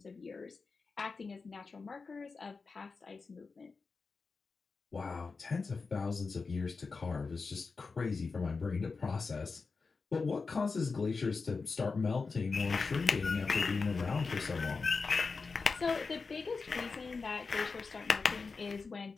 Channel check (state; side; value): quieter; right; 4.5 dB